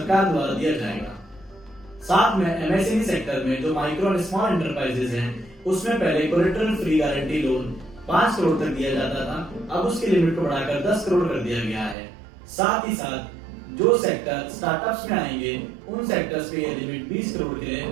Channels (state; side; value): drops out; left; at 12.0 s